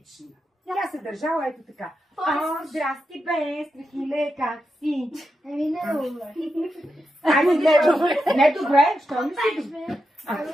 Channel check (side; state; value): both; normal; correlation 0.87